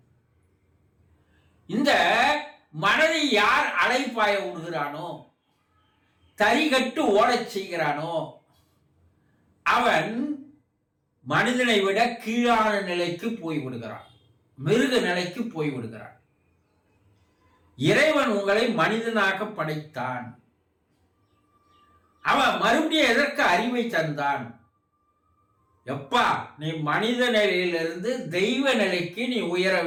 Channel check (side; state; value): both; identical; correlation 1.00